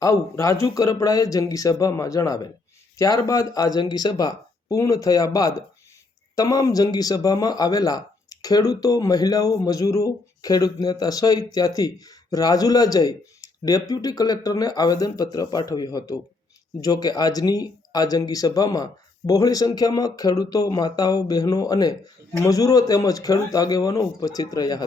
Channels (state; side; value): quieter; right; 3.5 dB